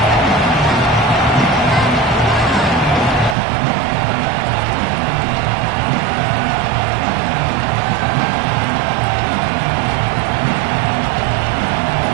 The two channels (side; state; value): left; drops out; at 3.4 s